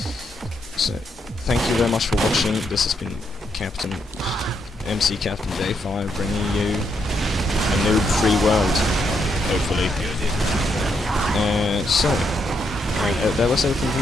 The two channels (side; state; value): both; normal; correlation 0.78